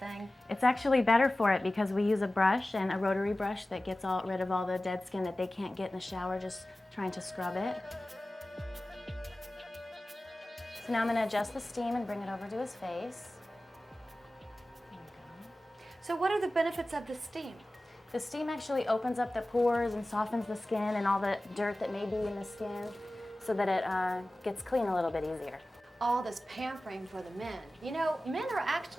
It's actually better for it because we use a brush and a rotary brush that gets rid of all the dead skin that they can't get in the shower just trying to scrub it. So now I'm going to adjust the steam and bring it over to his face. There we go. So what are the benefits of the steam? The steam actually opens up the pores and softens the skin and all the dirt that may be in the skin so that it gets clean a little bit easier. All this pampering for the men. You know, men are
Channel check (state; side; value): normal; both; correlation 0.96